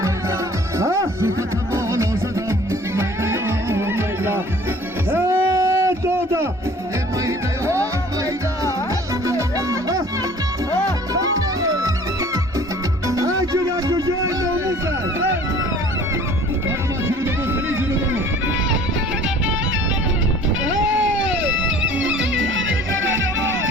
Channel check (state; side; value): normal; both; correlation 0.50